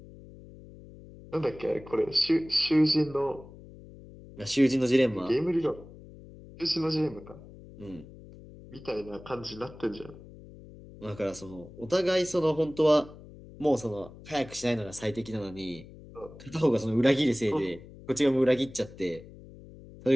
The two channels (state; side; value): noise; left; hum, 18 dB below the sound